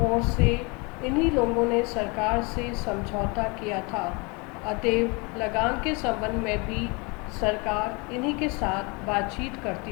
ओर से इन्हीं लोगों ने सरकार से समझौता किया था, अतएव लगान के संबंध में भी सरकार इन्हीं के साथ बातचीत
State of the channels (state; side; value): quieter; right; 29.3 dB